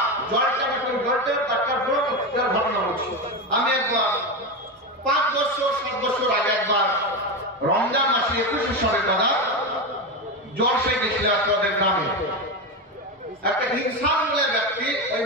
জলটা একটা ঘটনা হচ্ছে। আমি একবার 5 বছর 7 বছর আগে একবার রমজান মাসে 21 সালে দাদা জ্বর সে গেছিল আপনাদের গ্রামে। একটা ইনসান বলে ব্যক্তি ওই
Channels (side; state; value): both; normal; correlation 0.15